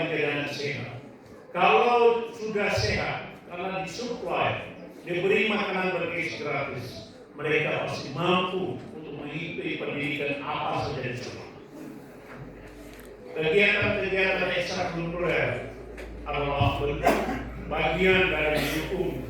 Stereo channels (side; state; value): both; identical; correlation 1.00